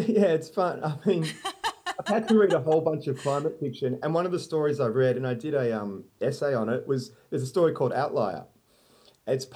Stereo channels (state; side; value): identical; both; correlation 1.00